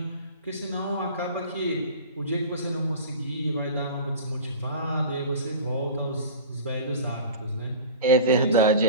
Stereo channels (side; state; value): both; inverted; correlation -0.37